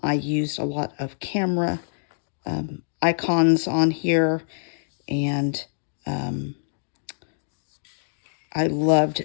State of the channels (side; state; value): right; silent; digital silence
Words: used a lot of camera icons on here, and I loved